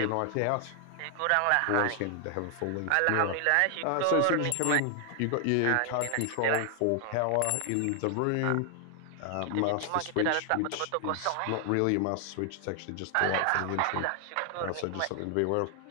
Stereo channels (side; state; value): both; different; correlation 0.00